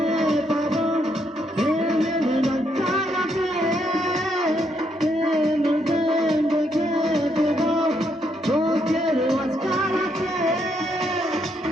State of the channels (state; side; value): normal; both; correlation 0.75